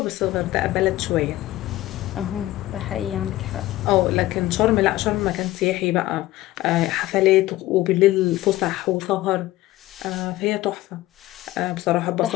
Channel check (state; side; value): quieter; right; 16.6 dB